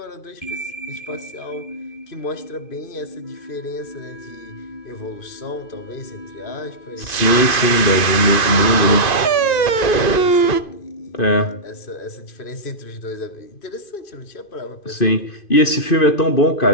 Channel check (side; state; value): right; late; 2.5 ms